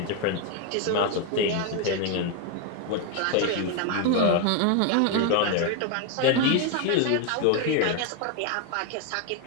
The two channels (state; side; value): different; both; correlation 0.01